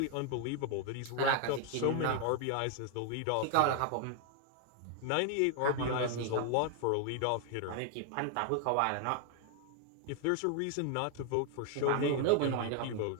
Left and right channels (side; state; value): both; different; correlation 0.00